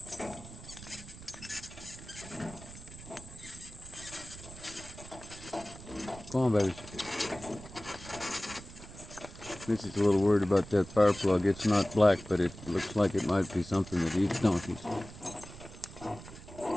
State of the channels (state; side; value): noise; right; rumble, 15 dB below the sound